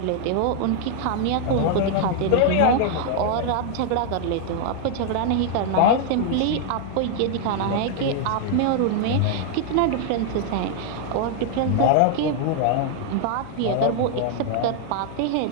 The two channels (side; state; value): both; different; correlation 0.00